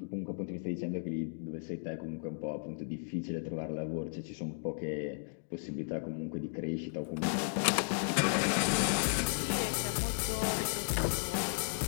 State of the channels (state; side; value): silent; right; digital silence